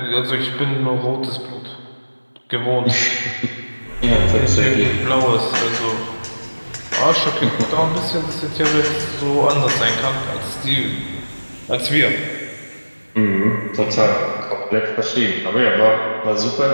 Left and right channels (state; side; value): inverted; both; correlation -1.00